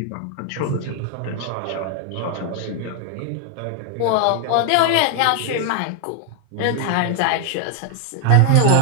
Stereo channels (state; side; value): different; both; correlation 0.00